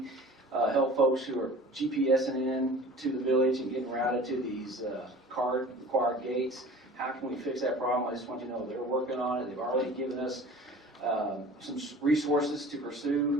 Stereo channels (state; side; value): normal; both; correlation 0.43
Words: help folks who are GPSing in to the village and getting routed to these card-required gates. How can we fix that problem? I just want you to know they're working on it. They've already given us some resources to